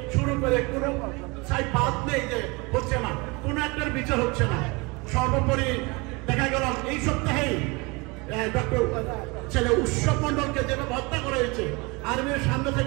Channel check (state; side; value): quieter; left; 26.7 dB